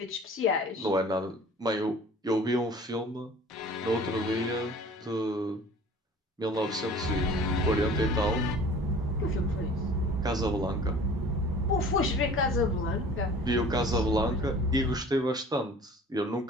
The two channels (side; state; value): both; normal; correlation 0.46